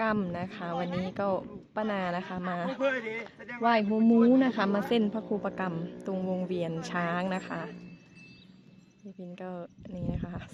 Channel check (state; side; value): identical; both; correlation 1.00